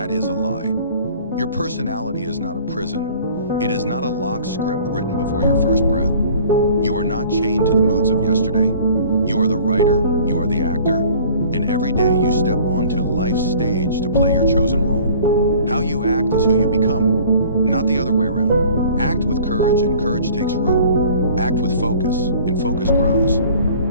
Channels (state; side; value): inverted; both; correlation -0.50